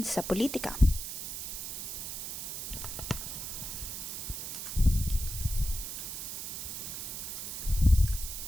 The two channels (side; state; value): right; noise; hiss, 6 dB below the sound